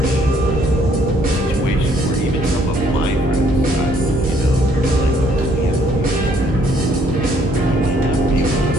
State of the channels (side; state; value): both; normal; correlation 0.65